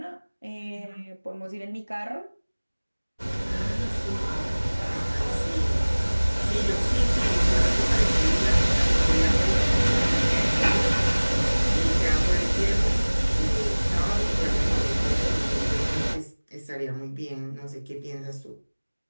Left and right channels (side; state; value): both; inverted; correlation -1.00